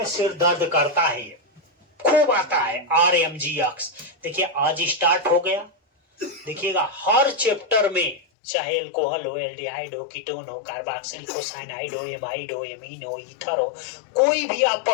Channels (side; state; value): right; drops out; at 8.2 s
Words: सिर दर्द करता है, खूब आता है RMGX। देखिए आज स्टार्ट हो गया, देखिएगा हर चैप्टर में, चाहे अल्कोहल हो, एल्डिहाइड हो, कीटोन हो, कार्बोक्सिलिक हो, साइनाइड हो, एमाइड हो, एमीन हो, ईथर हो, कोई भी आप